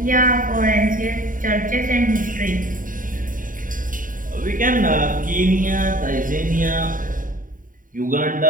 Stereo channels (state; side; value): late; left; 0.39 ms